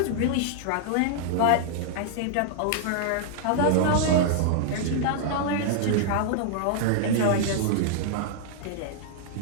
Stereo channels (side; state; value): both; different; correlation -0.01